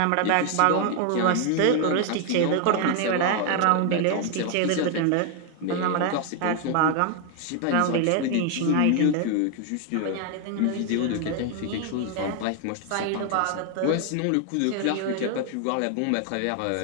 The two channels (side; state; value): both; different; correlation 0.00